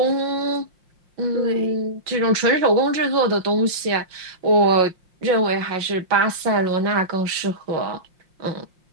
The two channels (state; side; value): late; left; 5.7 ms